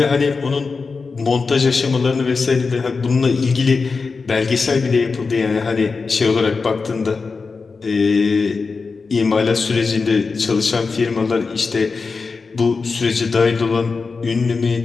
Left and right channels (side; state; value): right; quieter; 4.5 dB